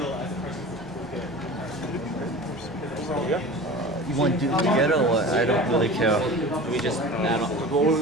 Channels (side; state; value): both; normal; correlation 0.36